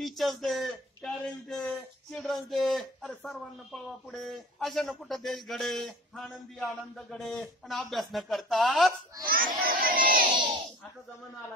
day, parents day, children's day, अरे सर्वांना पळवा पुढे, अशानं कुठं देश घडे, आनंदी आनंद गडे आणि अभ्यास न करताच. आता जमाना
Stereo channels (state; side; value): normal; both; correlation 0.41